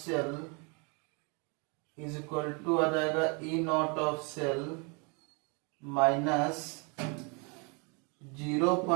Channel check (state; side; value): quieter; left; 33.2 dB